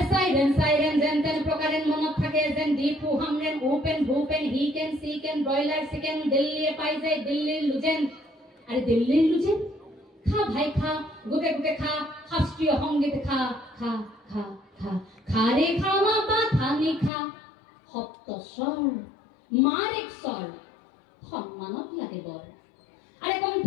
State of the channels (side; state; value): right; drops out; at 17.1 s